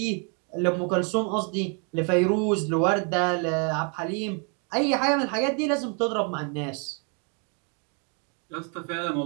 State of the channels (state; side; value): quieter; left; 38.3 dB